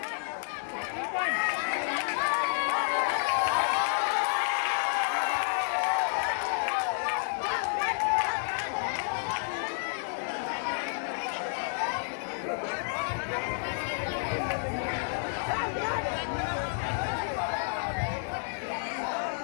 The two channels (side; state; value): right; silent; 58 dB below the other